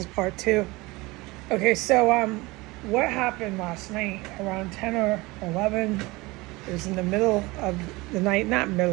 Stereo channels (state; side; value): quieter; left; 22.4 dB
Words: part two. Okay, so what happened last night around 10 or 11? It was in the middle of the night, not